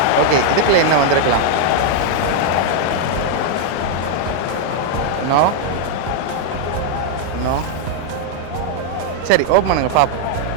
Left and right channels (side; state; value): both; different; correlation 0.00